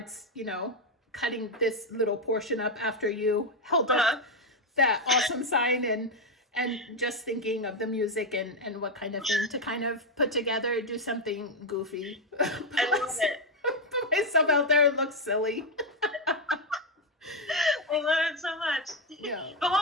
you know, cutting this little portion up after you held up that awesome sign, and just thinking of the music and what kind of thing to kind of put together, do something goofy. I love it. Put myself out there and look silly. I love it so much. Yeah. But what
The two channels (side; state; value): both; normal; correlation 0.05